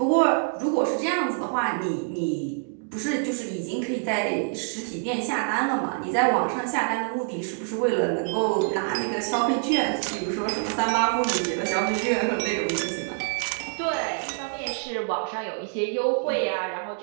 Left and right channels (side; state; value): left; silent; 61 dB below the other